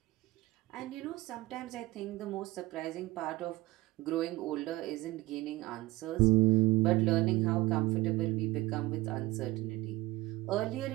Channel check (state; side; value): quieter; left; 19.7 dB